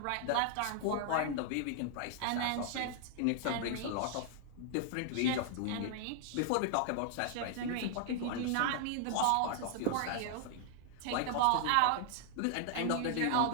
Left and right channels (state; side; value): different; both; correlation 0.00